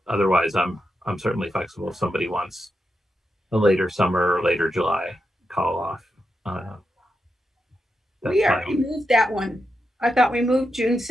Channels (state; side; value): normal; both; correlation 0.86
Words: otherwise, I'm certainly flexible if somebody wants a later summer or later July call off. We already moved that one. I thought we moved June